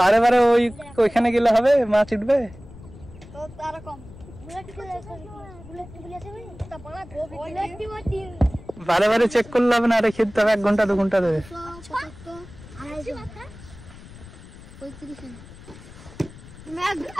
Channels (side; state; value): left; noise; rumble, 18 dB below the sound